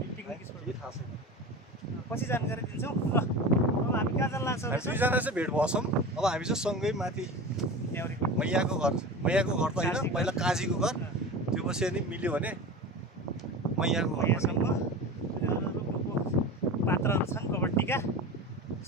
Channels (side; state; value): both; normal; correlation 0.31